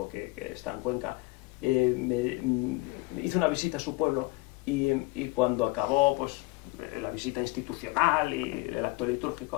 que está en Cuenca, hizo una visita a su pueblo y cuando acabó pues la visita institucional y el acto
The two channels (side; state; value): right; quieter; 23.3 dB